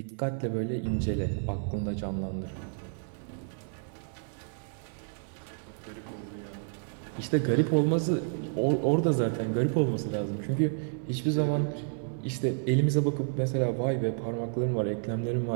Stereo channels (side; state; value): left; silent; digital silence